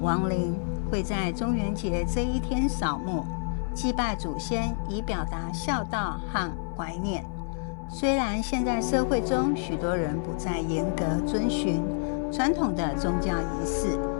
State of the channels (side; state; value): right; silent; 59 dB below the other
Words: 灵，会在中元节这一天扫墓，祭拜祖先，以表达孝道和怀念。虽然现在社会中许多人不再严格遵循传统的宗教仪式，